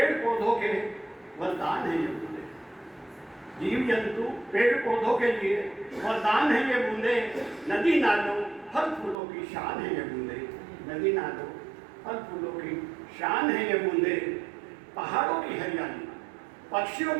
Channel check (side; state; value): left; drops out; at 9.2 s